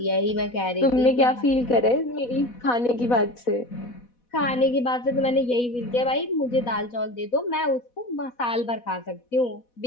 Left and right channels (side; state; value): right; late; 4.1 ms